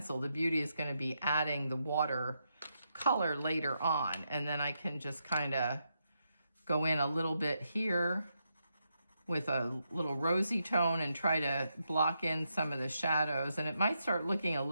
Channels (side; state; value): both; inverted; correlation -0.82